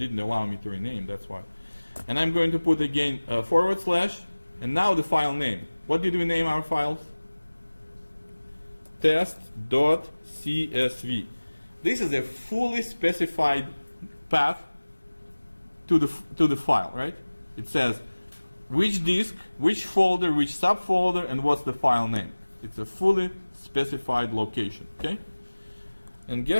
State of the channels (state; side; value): inverted; both; correlation -1.00